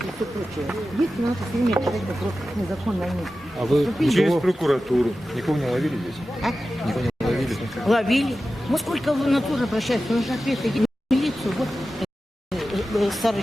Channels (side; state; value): both; normal; correlation 0.93